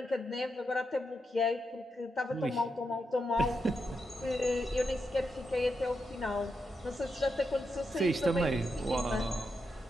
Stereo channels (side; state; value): both; normal; correlation 0.85